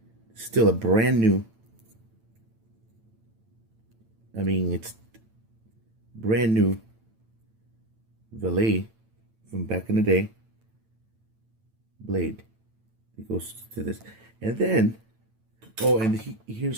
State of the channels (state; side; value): late; left; 9.0 ms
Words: Still a brand new. I mean, it's brand new Valet from back in the day blade. It goes to this. And then, oh, and